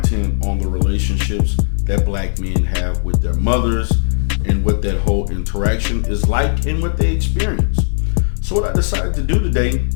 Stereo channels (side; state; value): right; silent; 62 dB below the other